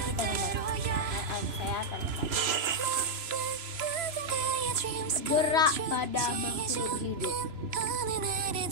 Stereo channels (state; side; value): late; left; 3.0 ms